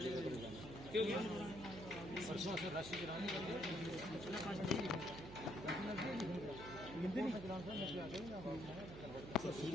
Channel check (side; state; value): right; noise; hum, 11 dB below the sound